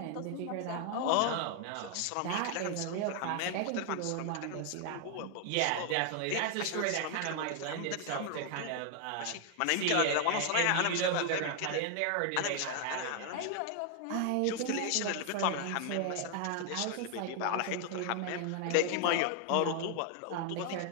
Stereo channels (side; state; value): both; different; correlation 0.00